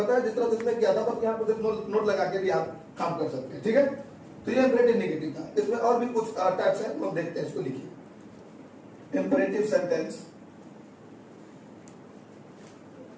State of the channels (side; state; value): both; identical; correlation 1.00